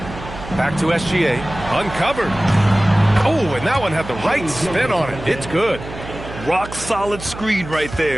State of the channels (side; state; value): right; noise; hum, 12 dB below the sound